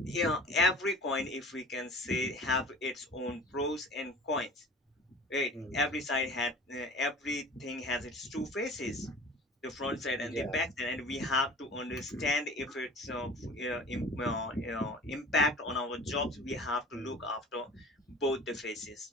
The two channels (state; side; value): normal; both; correlation 0.42